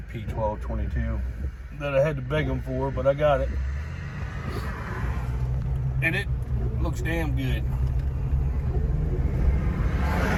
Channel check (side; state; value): both; identical; correlation 1.00